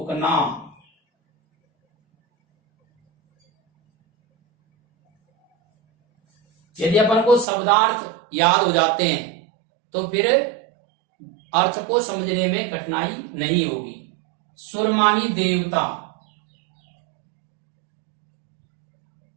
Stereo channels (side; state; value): left; drops out; at 7.5 s